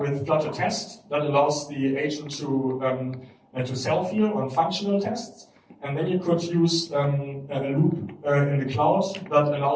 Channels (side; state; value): both; identical; correlation 1.00